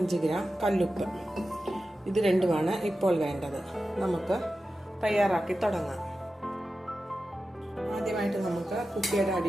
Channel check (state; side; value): normal; both; correlation 0.93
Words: ഗ്രാം കല്ലുപ്പ്. ഇത് രണ്ടുമാണ് ഇപ്പോൾ വേണ്ടത്. നമുക്ക് തയ്യാറാക്കി തുടങ്ങാം. ആദ്യമായിട്ട് നമുക്ക് കുപ്പിയുടെ